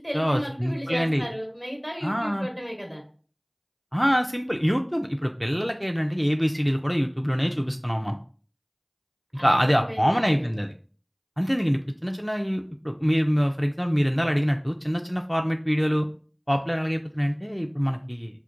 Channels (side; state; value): both; identical; correlation 1.00